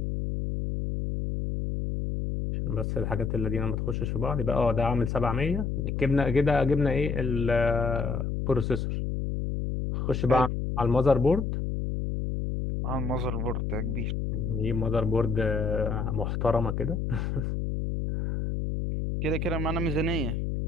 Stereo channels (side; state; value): left; noise; hum, 1 dB below the sound